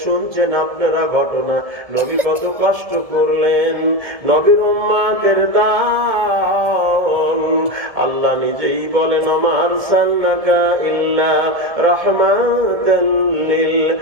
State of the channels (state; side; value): late; left; 1.7 ms